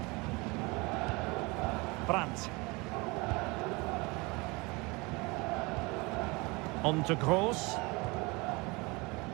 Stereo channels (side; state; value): left; quieter; 25.8 dB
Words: Brandt. On to Gross.